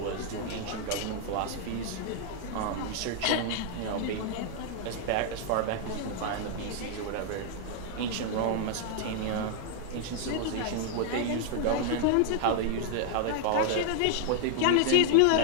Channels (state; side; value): different; both; correlation 0.00